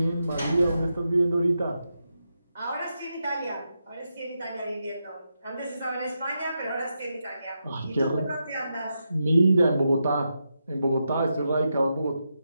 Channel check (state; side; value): inverted; both; correlation -0.86